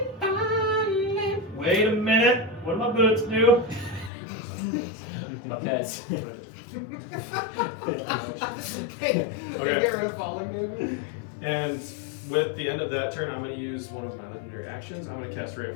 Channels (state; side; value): drops out; right; at 4.1 s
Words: Wait a minute. What do my boots do? Because Hey, Okay. get rid of falling damage. And with the end of that turn, I'm going to use one of my legendary actions. I'm going to cast Ray